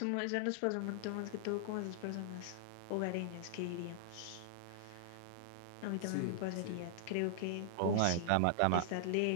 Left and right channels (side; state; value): both; different; correlation -0.01